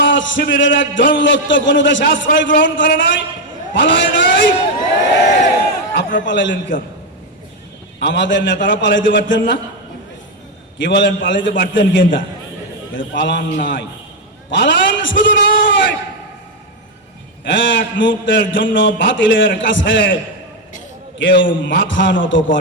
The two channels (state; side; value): normal; both; correlation 0.05